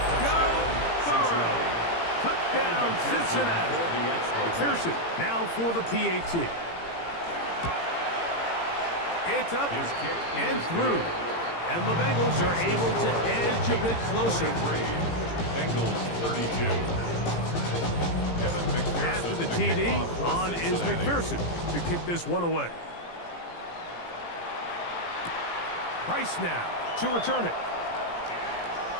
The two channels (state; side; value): late; right; 17 ms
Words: Joe Burrow. Touchdown, Cincinnati. McPherson now for the PAT. It's up and through. And the Bengals are able to edge a bit closer. Bengals 32. After the TD, on is McPherson to kick this one away. Price now to return it.